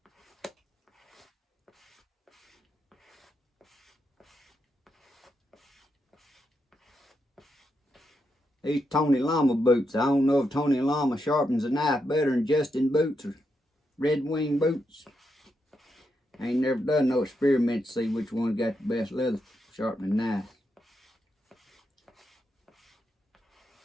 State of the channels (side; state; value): both; normal; correlation 0.83